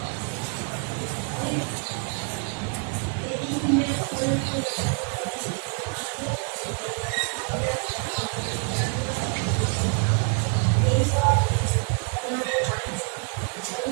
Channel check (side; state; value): left; quieter; 36.5 dB